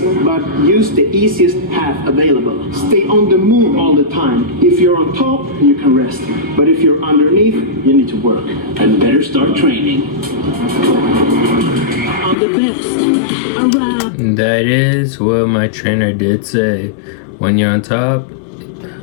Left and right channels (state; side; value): drops out; right; at 12.4 s